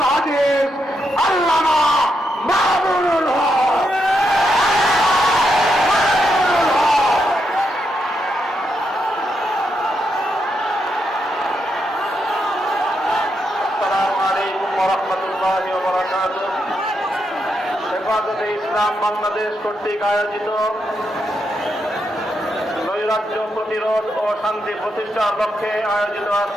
হাদিস আল্লামা মামুনুল হক। আসসালামু আলাইকুম ওয়া রাহমাতুল্লাহি ওয়া বারাকাতুহু। হেফাজতে ইসলাম বাংলাদেশ কর্তৃক আয়োজিত নৈরাজ্য প্রতিরোধ ও শান্তি প্রতিষ্ঠার লক্ষ্যে আয়োজিত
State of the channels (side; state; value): both; normal; correlation 0.82